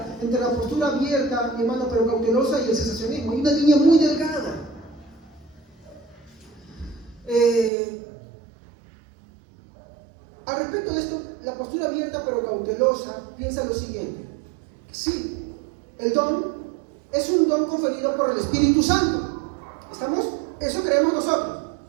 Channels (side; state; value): left; drops out; at 7.7 s